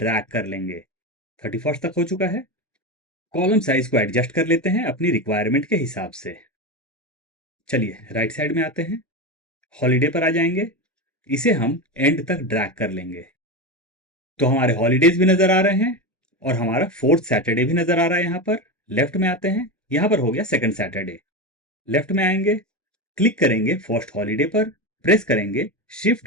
कर लेंगे। 31st तक हो चुका है। कॉलम साइज को एडजस्ट कर लेते हैं अपनी रिक्वायरमेंट के हिसाब से। चलिए राइट साइड में आते हैं, हॉलीडे पर आ जाएंगे, इसे हम एंड तक ड्रैग कर लेंगे। तो हमारे हॉलीडेज भी नजर आ रहे हैं और हमारा 4th सैटरडे भी नजर आ रहा है। यहां पर लेफ्ट में आते हैं, यहां पर हो गया 2nd सैटरडे। लेफ्ट में आएंगे, क्लिक करेंगे फर्स्ट हॉलीडे पर, प्रेस करेंगे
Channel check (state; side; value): normal; both; correlation 0.18